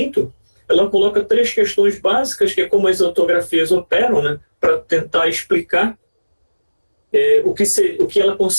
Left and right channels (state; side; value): inverted; both; correlation -1.00